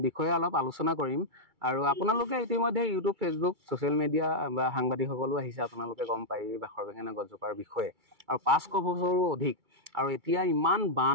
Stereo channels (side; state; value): left; late; 2.3 ms